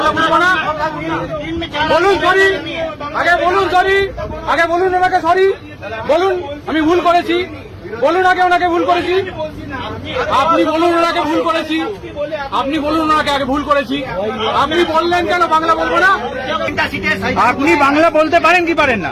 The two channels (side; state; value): both; identical; correlation 1.00